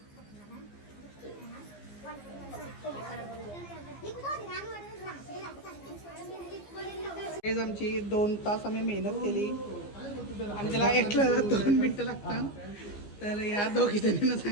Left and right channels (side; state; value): right; late; 15 ms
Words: गाईज आमची 2 तास आम्ही मेहनत केली आणि त्याला एटला 2 मिनिटं लागतात. तर या दोघी जणींना